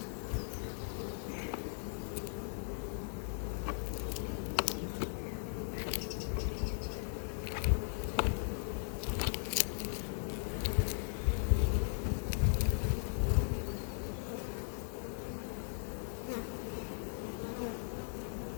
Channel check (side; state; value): right; silent; digital silence